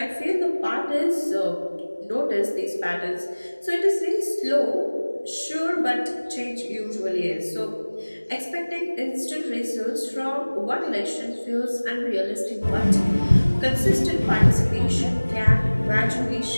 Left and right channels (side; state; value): both; inverted; correlation -1.00